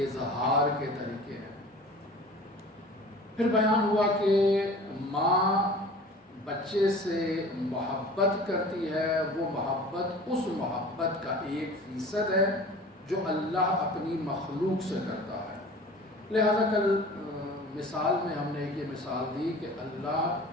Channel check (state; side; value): normal; both; correlation 0.42